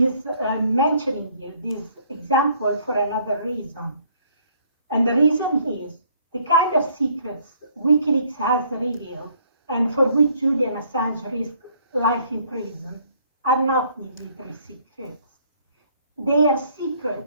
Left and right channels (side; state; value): both; inverted; correlation -0.63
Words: mentioning you this example for another reason. And the reason is the kind of secrets WikiLeaks has revealed and for which Julian Assange risked life in prison are not military secrets. They are